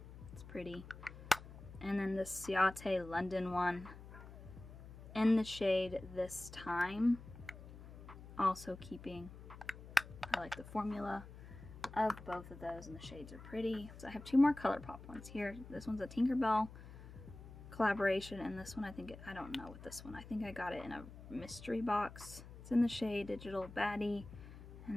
It's pretty. And then the Ciate London one in the shade This Time. Also keeping. I like the formula of both of those, and the shades are pretty. So I have two more ColourPop ones here. This one's a Tinkerbell collaboration, and this one I don't know what this one. I think I got it in a mystery box. It's in the shade Digital Baddie,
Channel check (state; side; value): noise; left; hum, 15 dB below the sound